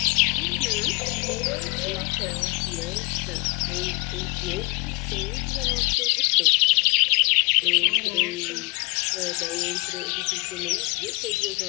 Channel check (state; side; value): quieter; right; 26.5 dB